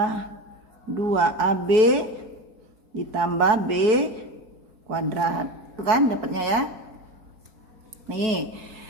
2AB ditambah B kuadrat. Itu kan dapatnya ya. Nih,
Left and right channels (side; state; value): left; late; 4.7 ms